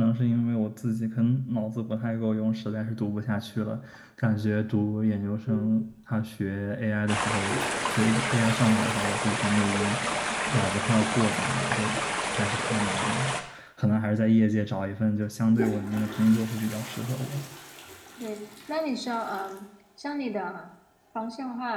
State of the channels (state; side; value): identical; both; correlation 1.00